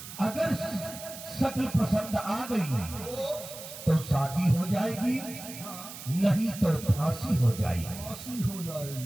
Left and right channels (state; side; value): noise; right; hiss, 12 dB below the sound